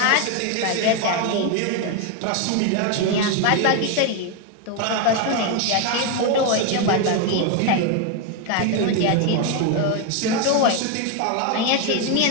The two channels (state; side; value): different; both; correlation 0.01